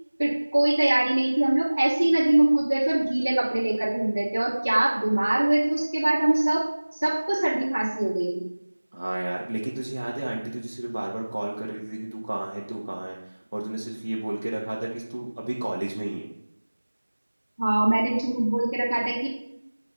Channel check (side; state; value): both; inverted; correlation -1.00